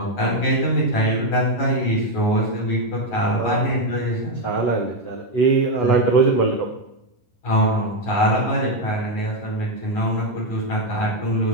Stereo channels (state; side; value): late; right; 11 ms